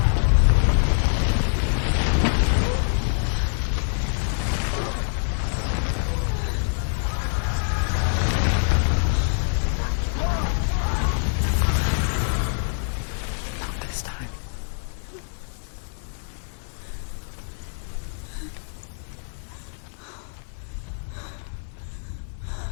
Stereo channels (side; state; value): right; silent; 56 dB below the other